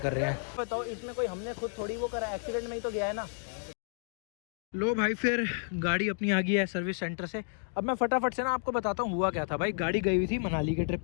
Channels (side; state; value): right; silent; 56 dB below the other